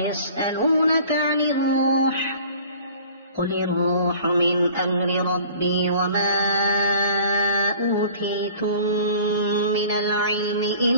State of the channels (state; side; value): inverted; both; correlation -0.48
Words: عن الروح قل الروح من أمر ربي وما أوتيتم من العلم